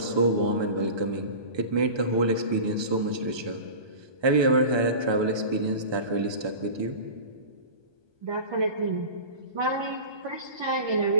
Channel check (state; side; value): late; left; 1.2 ms